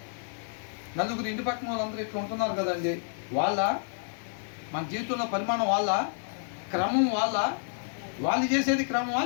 నలుగురు ఇంటి పక్కన వాళ్ళందరూ ఇట్లా ఉంటున్నారు కదండి. మన జీవితంలో పరిమాణం క్రమం వాళ్ళు చేసేది క్రమమా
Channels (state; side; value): silent; right; digital silence